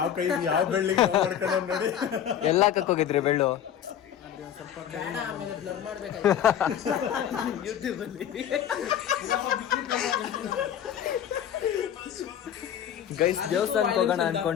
ಕೈ ಯಾವ ಬೆಳ್ಳಿಗೆ ನೋಡಿ ಎಲ್ಲ ಕಕ್ಕೋಗಿದ್ರಿ ಬೆಳ್ಳು. ಗೈಸ್ ದೇವಸ್ಥಾನಕ್ಕೆ ಹೋಗೋಣ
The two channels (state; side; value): quieter; right; 9.7 dB